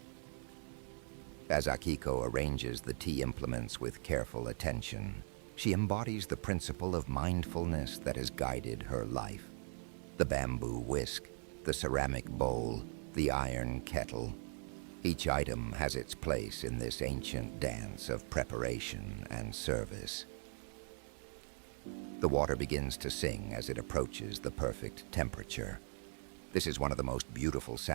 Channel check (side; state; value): left; silent; 51 dB below the other